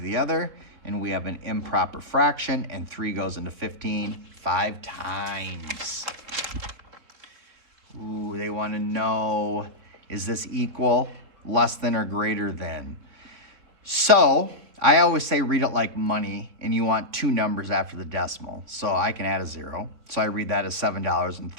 other. And we have an improper fraction. And 3 goes into 15 5 times. Ooh, they want to know, is this equal, less than, or greater than? So I always say read it like money, and you want two numbers after the decimal. So I can add a 0. So I read that as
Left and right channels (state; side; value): late; left; 3.7 ms